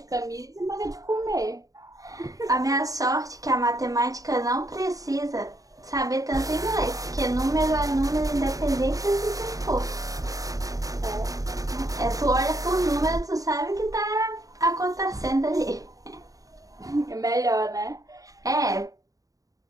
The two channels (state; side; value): late; left; 0.17 ms